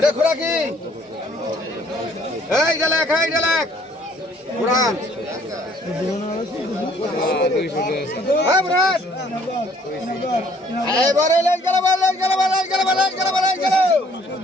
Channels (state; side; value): normal; both; correlation 0.60